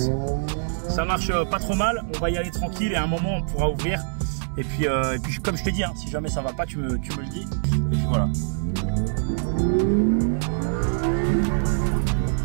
Ça marche pas trop mal. On va y aller tranquille et à un moment on pourra ouvrir. Et puis comme je te dis, hein, si jamais ça va pas, tu me le dis. Et puis voilà.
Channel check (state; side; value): silent; left; 60 dB below the other